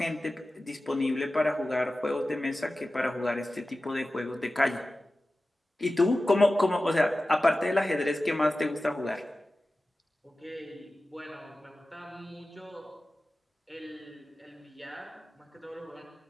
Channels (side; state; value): both; normal; correlation 0.95